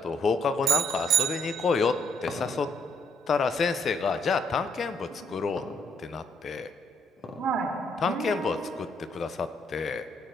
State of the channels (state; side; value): normal; both; correlation 0.70